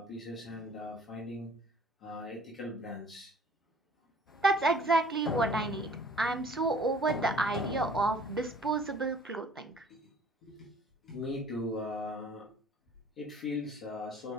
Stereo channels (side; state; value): both; normal; correlation 0.53